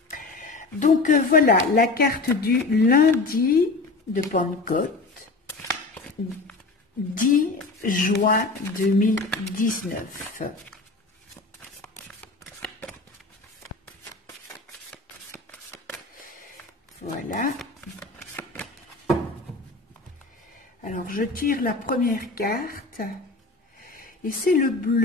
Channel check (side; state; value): right; quieter; 3.5 dB